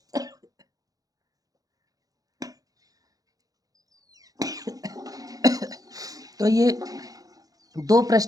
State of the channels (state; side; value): late; left; 0.17 ms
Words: तो ये 2